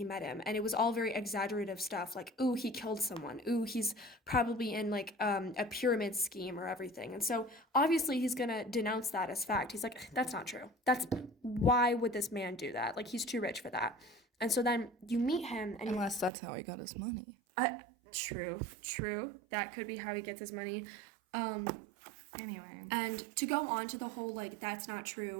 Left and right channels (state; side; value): drops out; left; at 16.3 s